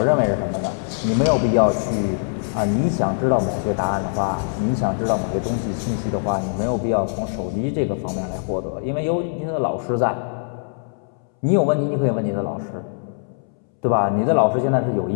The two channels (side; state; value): right; silent; 64 dB below the other